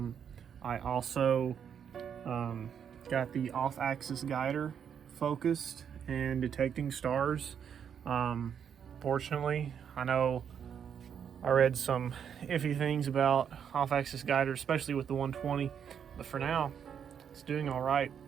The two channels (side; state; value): left; quieter; 8.0 dB